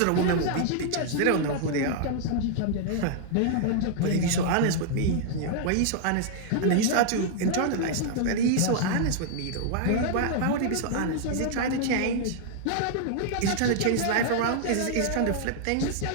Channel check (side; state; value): both; different; correlation -0.01